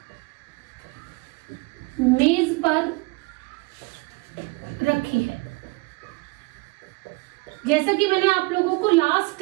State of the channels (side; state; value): left; quieter; 27.0 dB